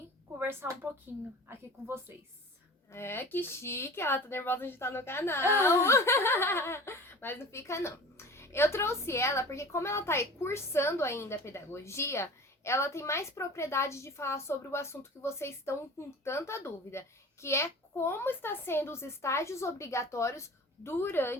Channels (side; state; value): both; normal; correlation 0.39